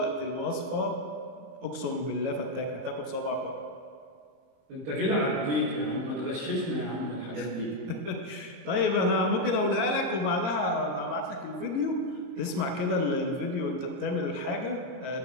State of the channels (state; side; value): late; left; 22 ms